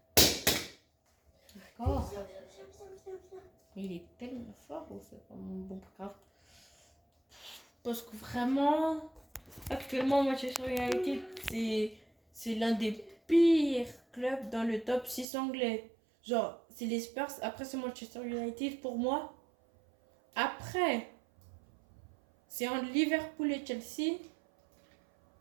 D'accord. Il est tellement fort ou c'est pas mon bon grave. Parce que vraiment, actuellement, Manchester United, c'est l'un des pires clubs dans le top 6 anglais. Genre, c'est les Spurs, après c'est Manchester United pour moi. Après, c'est entre Liverpool et Chelsea.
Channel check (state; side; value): drops out; left; at 15.2 s